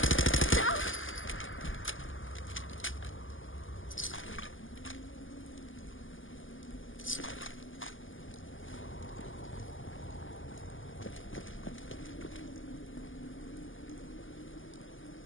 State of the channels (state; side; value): late; right; 0.58 ms